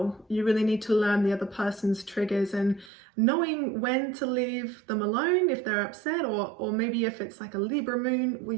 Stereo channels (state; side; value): drops out; left; at 2.9 s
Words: You really need to learn the other person's triggers and knowing when to leave them alone if they're upset, or maybe if it's like a Libra moon where